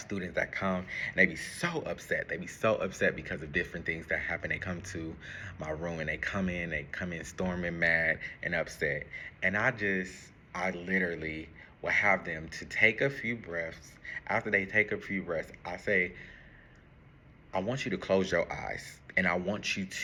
students that come and they be so upset. They be so upset because of different things that happen. They come to my room and they come in storming mad and upset. And I literally will have them to take a few breaths. After they take a few breaths, I say, I want you to close your eyes and I want you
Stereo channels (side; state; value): both; identical; correlation 1.00